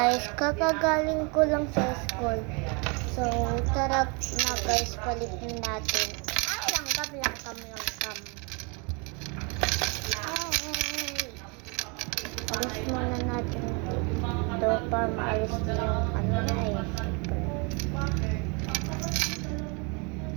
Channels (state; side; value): quieter; left; 32.0 dB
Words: kakagaling ko lang sa school. So, tara na guys, palitin natin. Ay, langkam. Alis muna natin ito para maalis na yung ano na eh.